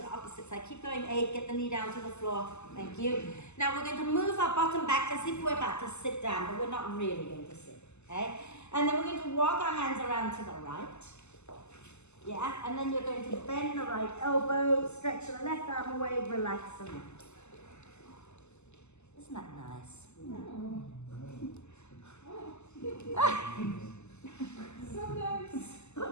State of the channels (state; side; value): late; right; 0.82 ms